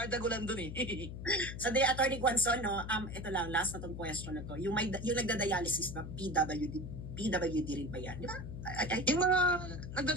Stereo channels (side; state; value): left; noise; hum, 8 dB below the sound